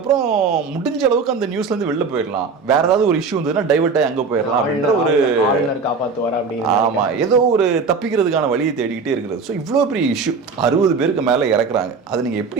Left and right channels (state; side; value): quieter; left; 4.8 dB